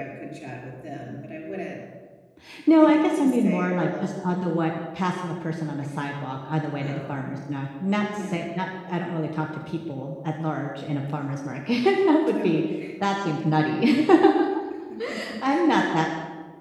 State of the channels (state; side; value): identical; both; correlation 1.00